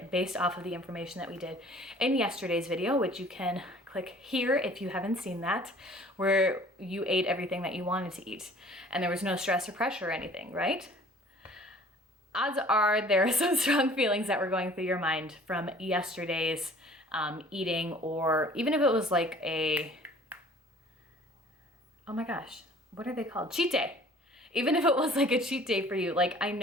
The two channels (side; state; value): both; normal; correlation 0.51